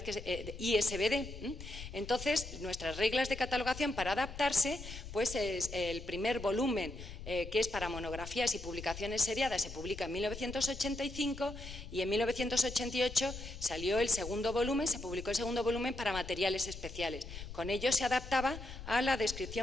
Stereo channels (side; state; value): left; noise; rumble, 11 dB below the sound